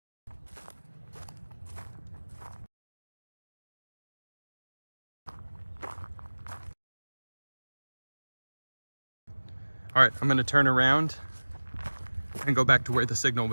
All right, I'm gonna turn around and go back to where the signal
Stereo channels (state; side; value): inverted; both; correlation -1.00